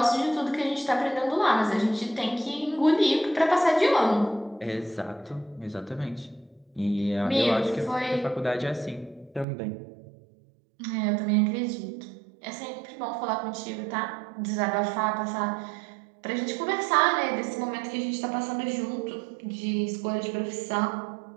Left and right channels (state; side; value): drops out; left; at 9.5 s